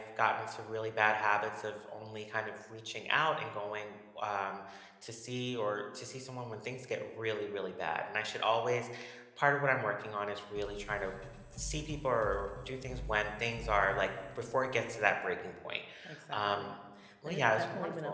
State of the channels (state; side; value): identical; both; correlation 1.00